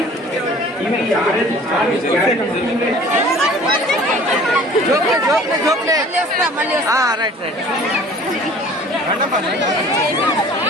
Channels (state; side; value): normal; both; correlation 0.49